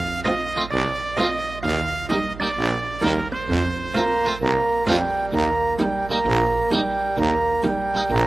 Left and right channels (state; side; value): noise; right; hum, 13 dB below the sound